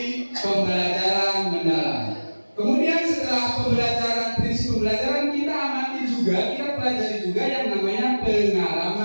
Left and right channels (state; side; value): inverted; both; correlation -1.00